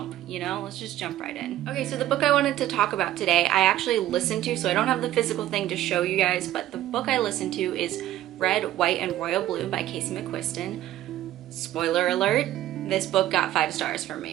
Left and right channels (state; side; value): quieter; left; 13.7 dB